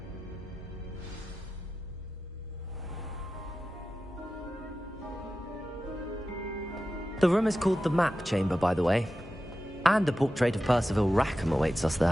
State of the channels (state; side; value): normal; both; correlation 0.93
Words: The room is called the Map Chamber, by the way. And a portrait of Percival Rackham awaits us